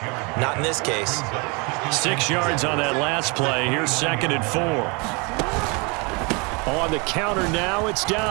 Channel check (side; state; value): left; quieter; 30.1 dB